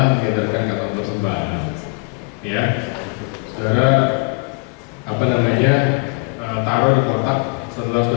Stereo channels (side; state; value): right; quieter; 35.1 dB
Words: mengedarkan kantong persembahan, ya. Saudara taruh di kotak setelah